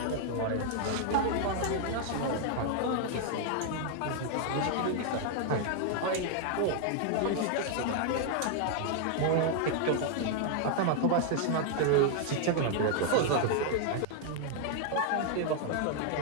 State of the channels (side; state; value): both; different; correlation 0.00